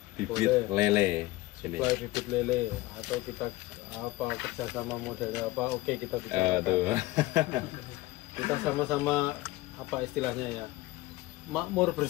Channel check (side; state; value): right; quieter; 19.0 dB